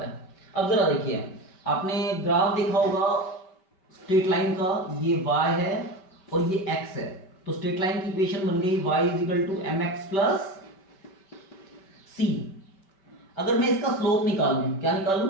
अब जरा देखिए, आपने ग्राफ देखा होगा स्ट्रेट लाइन का, ये y है और ये x है। तो स्ट्रेट लाइन की इक्वेशन बन गई y is equal to mx plus c। अगर मैं इसका स्लोप निकालूं, क्या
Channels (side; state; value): right; late; 5.1 ms